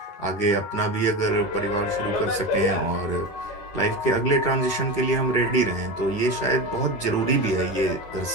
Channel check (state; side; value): late; right; 10 ms